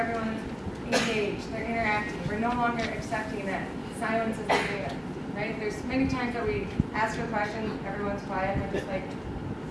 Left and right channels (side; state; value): both; identical; correlation 1.00